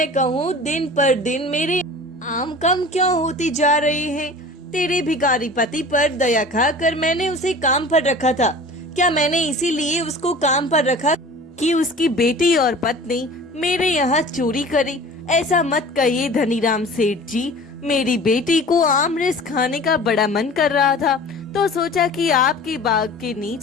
कहूँ दिन पर दिन मेरे आम कम क्यों होती जा रहे हैं? तेरे भिखारी पति पर दया खाकर मैंने उसे काम पर रखा था। क्या मैंने इसीलिए उसको काम पर रखा कि उसकी बेटी और पत्नी मेरे यहाँ चोरी करे? ऐसा मत कहिए धनीराम सेठ जी, मेरी बेटी को आमरस खाने का बड़ा मन कर रहा था तो सोचा कि आपके बाग के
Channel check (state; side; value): normal; both; correlation 0.41